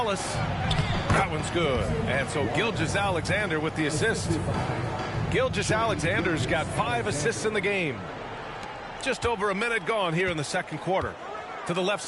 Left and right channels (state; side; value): identical; both; correlation 1.00